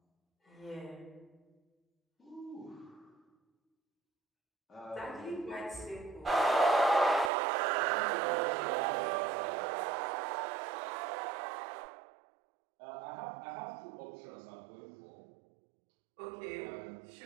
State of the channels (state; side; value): drops out; left; at 7.3 s